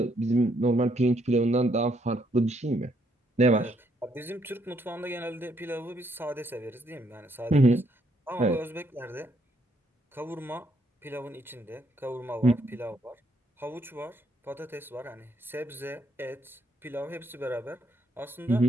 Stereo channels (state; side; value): normal; both; correlation 0.72